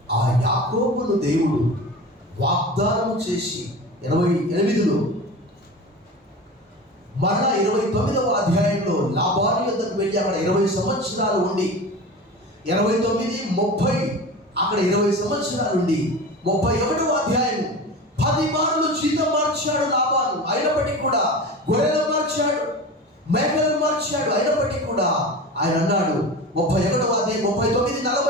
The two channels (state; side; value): normal; both; correlation 0.32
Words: ఆ యాకోబును దేవుడు వాగ్దానం చేసి 28లో మరలా 29వ అధ్యాయంలో లాబాను యొద్దకు వెళ్ళి అక్కడ 20 సంవత్సరాలు ఉండి 29, 30 అక్కడ 20 సంవత్సరాలు ఉండి 31వ అధ్యాయం 10 మార్లు జీతం మార్చాడు లాబాను. అయినప్పటికీ కూడా గొర్రెలు మార్చాడు, మేకలను మార్చాడు. అయినప్పటికీ కూడా ఆయన అన్నాడు 31వ అధ్యాయం 39,